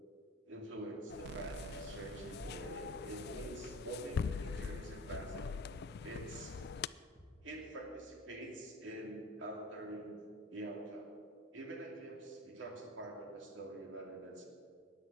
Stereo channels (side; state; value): both; normal; correlation 0.39